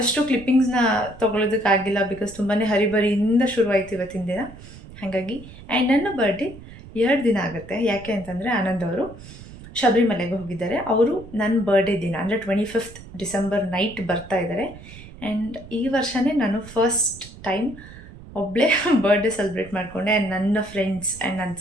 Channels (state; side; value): noise; right; rumble, 17 dB below the sound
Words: ಕ್ಲಿಪ್ಪಿಂಗ್ಸ್ನ ತೊಗೊಳೋದಕ್ಕಾಗಿಲ್ಲ, ಬಿಕಾಸ್ ತುಂಬಾ ಹರಿಬರಿಯಿಂದ ಶುರುವಾಯಿತು ಇವತ್ತಿನ ದಿನ. ಹಾಗಾಗಿ ಆ್ಯಂಡ್ ನನ್ನ ಬರ್ಡೇ 2 ದಿನ ಆಗುತ್ತೆ. ಯಾಕೆ ಅಂತಂದರೆ ಆನಂದ್ ಅವರು ಶಬರಿಮಲೆಗೆ ಹೋಗಿದ್ದಾರೆ. ಅವರು ನನ್ನ ಬರ್ಡೇ ದಿನ ಅಂದರೆ 25th ಡಿಸೆಂಬರ್ ನೈಟ್ ಬರ್ತಾ ಇದ್ದಾರೆ. ಆ್ಯಂಡ್ ಈ ವರ್ಷವೇ ನಾನು ಫಸ್ಟ್ ಟೈಮ್ ಒಬ್ಬಳೇ ಬರ್ಡೇ ಸೆಲೆಬ್ರೇಟ್ ಮಾಡಿಕೊಂಡೆ. ಆ್ಯಂಡ್ ನನ್ನ ಫ್ರೆಂಡ್ಸ್ ಆ್ಯಂಡ್ ನನ್ನ